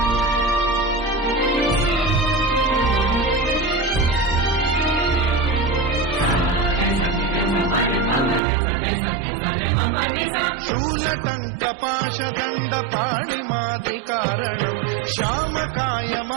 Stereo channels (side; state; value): left; drops out; at 8.4 s